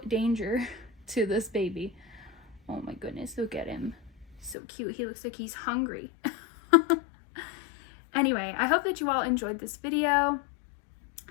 danger to this baby. Oh my goodness, look at him. So cute. He looks like he's hungry. Anyway, I hope that you all enjoyed this video.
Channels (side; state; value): right; drops out; at 4.5 s